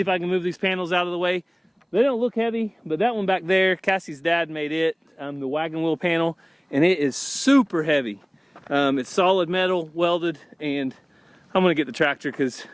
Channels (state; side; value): identical; both; correlation 1.00